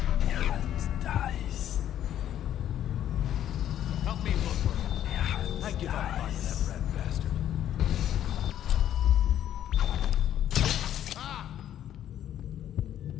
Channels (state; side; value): quieter; right; 11.1 dB